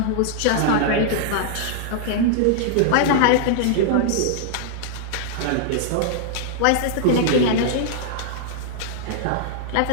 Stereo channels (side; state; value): both; different; correlation -0.01